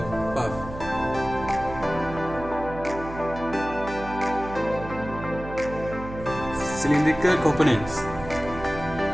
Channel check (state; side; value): noise; right; hum, 11 dB below the sound